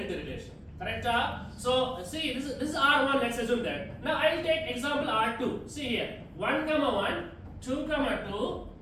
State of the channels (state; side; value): identical; both; correlation 1.00